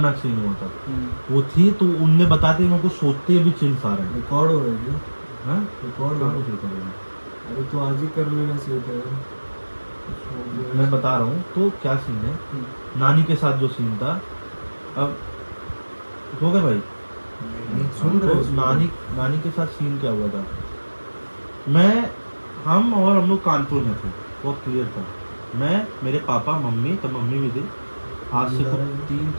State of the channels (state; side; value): inverted; both; correlation -1.00